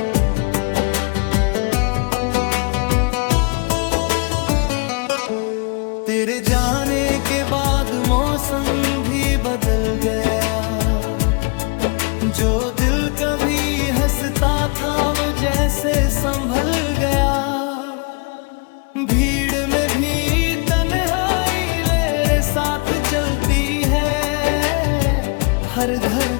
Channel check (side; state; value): right; quieter; 32.0 dB